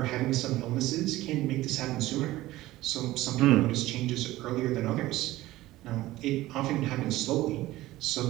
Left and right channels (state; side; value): quieter; left; 16.9 dB